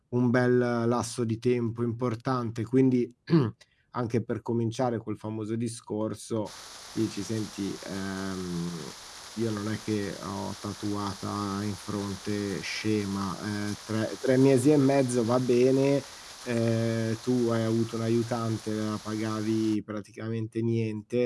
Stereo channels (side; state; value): both; identical; correlation 1.00